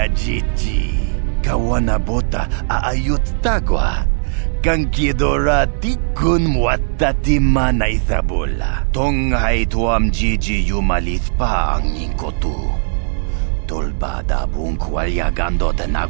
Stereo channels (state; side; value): silent; left; digital silence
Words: jiji. Kawana bota aayut tagwa. Kankidora tikun watati mana ithabola. Tonghai tuam jiji yumalith pa ang inkotu. Tolbada bunk walyagando de